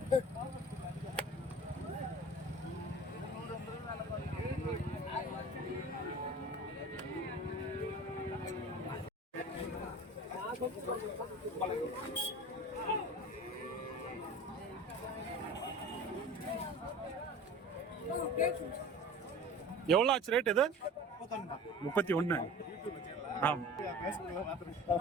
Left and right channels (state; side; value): normal; both; correlation 0.39